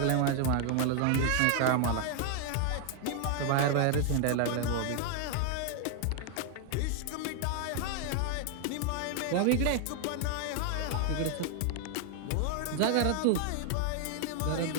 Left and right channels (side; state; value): both; different; correlation 0.00